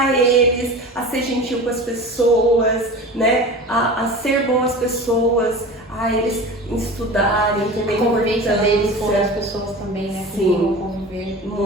eles a ser gentil com as pessoas, né? A ser boas pessoas, a eles estudarem, entender a convivência deles com as pessoas também, né? Sim, conviver.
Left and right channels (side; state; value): both; normal; correlation 0.34